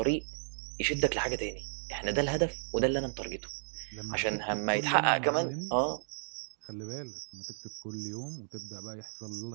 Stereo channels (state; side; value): silent; left; digital silence